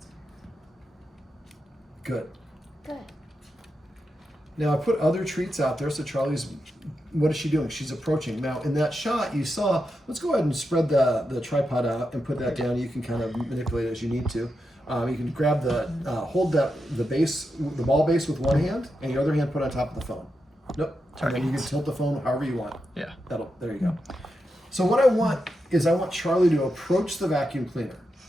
Good. Good. Now I put other treats out there, so Charlie's, what is she doing? She's approaching. Now in that shot you saw, let's go ahead and spread the tripod out and put that down. You can kind of manipulate it as you need to. You can grab hold the ball base with one hand, and your other hand put on top of the phone. Nope. And then you can tilt the phone however you want. Yeah. There you go. So what I want is I want Charlie to approach the vacuum cleaner.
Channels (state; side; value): normal; both; correlation 0.87